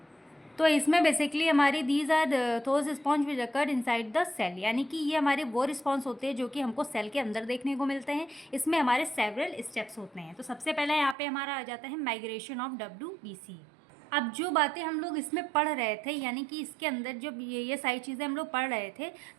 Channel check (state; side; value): drops out; left; at 11.2 s